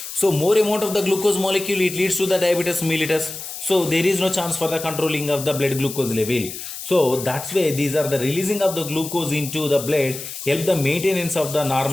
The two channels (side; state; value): left; noise; hiss, 9 dB below the sound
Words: So more amount of the glucose molecule, it leads to the diabetes mellitus. So there is no chance for the controlling of the blood glucose level. So that's why these are the releasing of the glucose into the blood help the maintenance of the